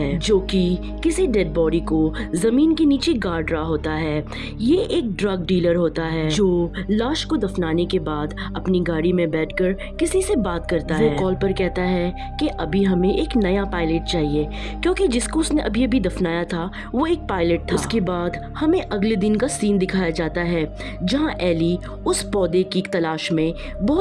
जो कि किसी डेड बॉडी को जमीन के नीचे गाड़ रहा होता है। ये एक ड्रग डीलर होता है जो लाश को दफनाने के बाद अपनी गाड़ी में बैठकर किसी से बात करता है। वो कॉल पर कहता है कि अभी हमें एक नया पायलट चाहिए क्योंकि जिसको उसने अभी अभी दफनाया था वो एक पायलट था। उसके बाद हमें अगले दिन का सीन दिखाया जाता है जहाँ एली उस पौधे की तलाश में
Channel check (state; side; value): identical; both; correlation 1.00